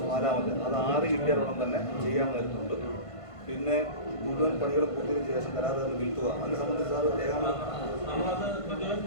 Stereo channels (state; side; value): late; right; 1.5 ms